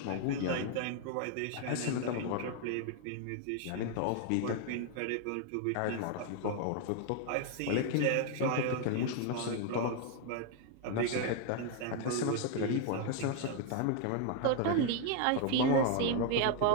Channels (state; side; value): different; both; correlation 0.00